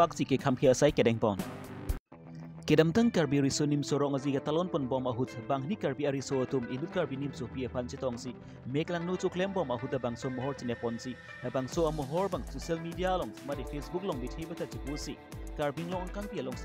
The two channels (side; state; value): both; identical; correlation 1.00